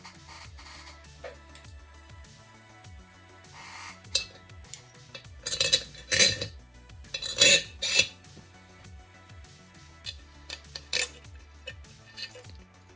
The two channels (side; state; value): both; normal; correlation 0.94